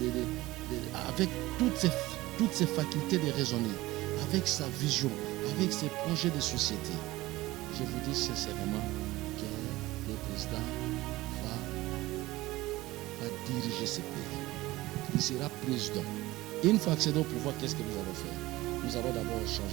avec toutes ses facultés de raisonner, avec sa vision, avec ses projets de société. Je vous dis sincèrement que le président va diriger ce pays. Il sera président. Et une fois accédé au pouvoir, qu'est-ce que nous allons faire? Nous allons d'abord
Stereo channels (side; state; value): left; quieter; 18.5 dB